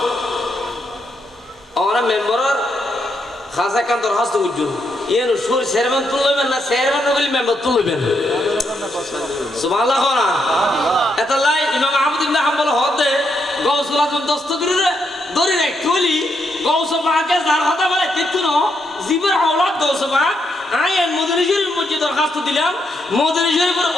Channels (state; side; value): normal; both; correlation 0.79